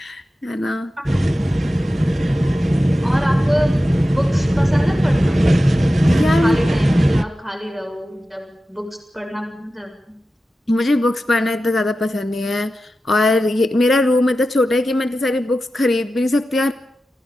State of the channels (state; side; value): normal; both; correlation 0.93